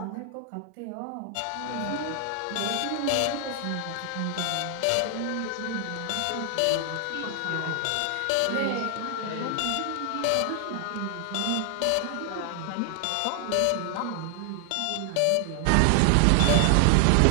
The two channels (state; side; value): different; both; correlation 0.00